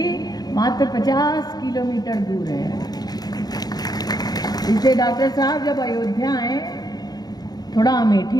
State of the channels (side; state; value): right; late; 0.19 ms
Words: मात्र 50 किलोमीटर दूर है। इसलिए डॉक्टर साहब जब अयोध्या आए थोड़ा